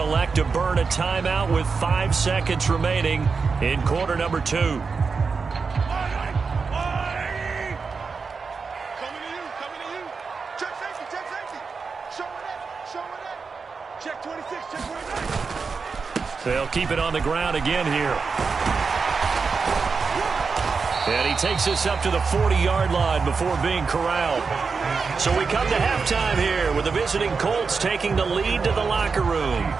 elect to burn a timeout with 5 seconds remaining in quarter number 2. Coming to you. Check safety. Show it. Check 26, check 29. They'll keep it on the ground again here. And he takes us up to the 40-yard line before being corralled. So we come to halftime here with the visiting Colts taking the lead to the locker room.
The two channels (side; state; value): left; quieter; 5.0 dB